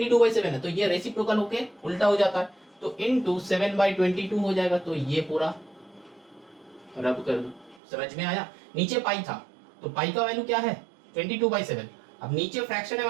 है तो ये रेसिप्रोकल होके उल्टा हो जाता है, तो इनटू 7/22 हो जाएगा, तो ये पूरा रब कर दो। समझ में आया, नीचे पाई था तो पाई का वैल्यू क्या है 22/7, अब नीचे फ्रैक्शन है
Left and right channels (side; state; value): left; drops out; at 7.8 s